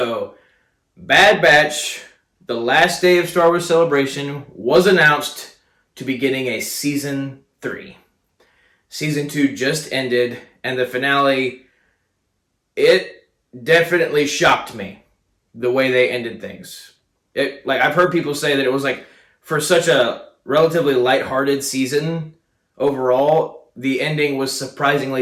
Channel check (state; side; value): identical; both; correlation 1.00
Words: Bad Batch, the last day of Star Wars Celebration, was announced to be getting a Season 3. Season 2 just ended, and the finale, it definitely shocked me the way they ended things. I've heard people say that it was for such a relatively lighthearted season overall, the ending was